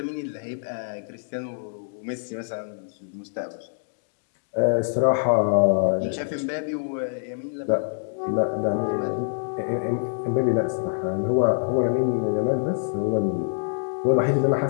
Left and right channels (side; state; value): right; silent; digital silence